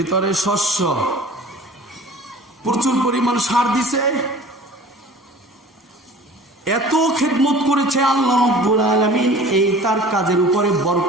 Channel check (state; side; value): normal; both; correlation 0.44